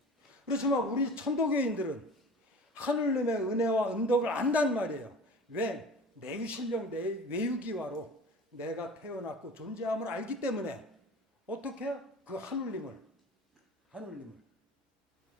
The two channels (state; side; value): normal; both; correlation 0.39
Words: 그렇지만 우리 천도교인들은 하느님의 은혜와 은덕을 안단 말이에요. 왜? 내유신령 내 외유기와로 내가 태어났고 존재함을 알기 때문에 어떻게? 그 하느님을